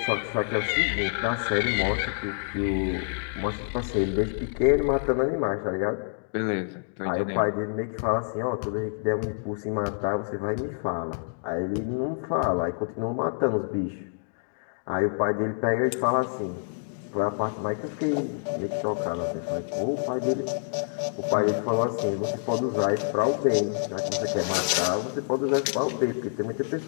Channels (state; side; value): silent; right; digital silence